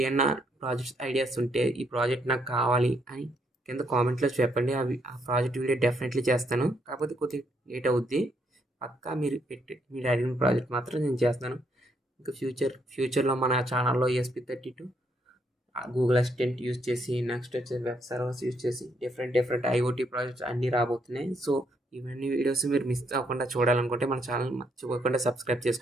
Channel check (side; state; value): both; normal; correlation 0.74